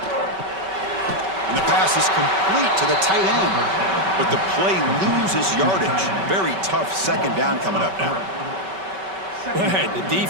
And the pass is complete to the tight end. But the play loses yardage. Very tough second down coming up now. Right, the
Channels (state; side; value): late; left; 5.2 ms